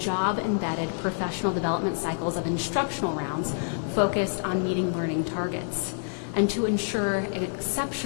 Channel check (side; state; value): right; silent; 60 dB below the other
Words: professional development cycles of instructional rounds focused on meeting learning targets. And to ensure